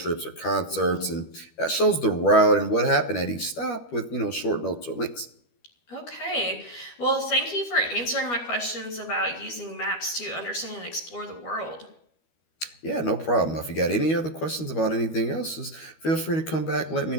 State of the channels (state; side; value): late; right; 12 ms